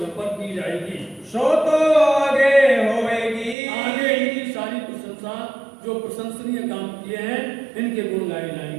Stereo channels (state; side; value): drops out; left; at 3.6 s